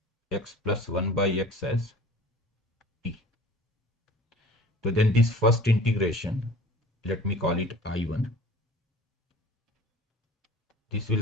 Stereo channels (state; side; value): normal; both; correlation 0.45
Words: x plus 1 by x as t. So then this first integration, let me call it I1. This